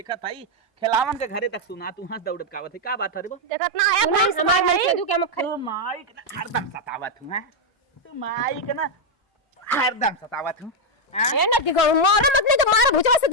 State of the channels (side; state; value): both; normal; correlation 0.01